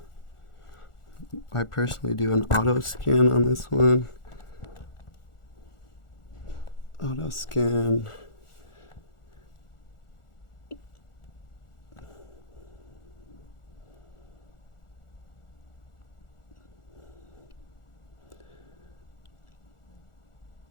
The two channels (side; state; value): right; late; 1.4 ms